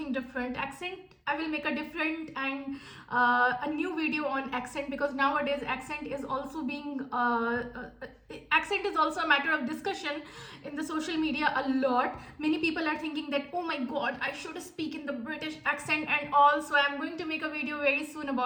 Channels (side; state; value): both; identical; correlation 1.00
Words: different. Accent, I will make a different and a new video on accent, because nowadays accent is also a matter of discussion in the social media a lot. Many people are thinking that, oh my god, I should speak in the British accent and all. So I'm going to make a video very soon